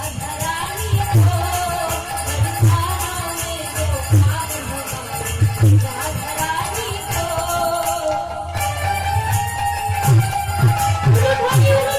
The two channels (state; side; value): identical; both; correlation 1.00